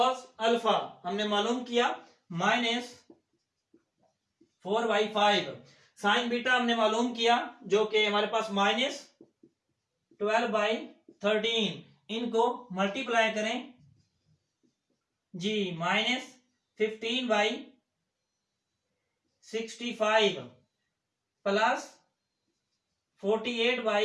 अल्फा हमने मालूम किया -4/5, साइन बीटा हमने मालूम किया जो कि हमारे पास -12/13। इनको मल्टीप्लाई करें जी, -15/65 plus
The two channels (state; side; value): identical; both; correlation 1.00